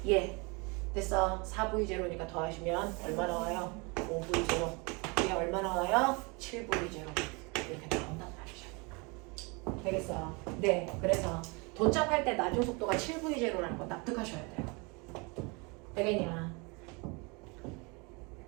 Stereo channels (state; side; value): quieter; left; 29.4 dB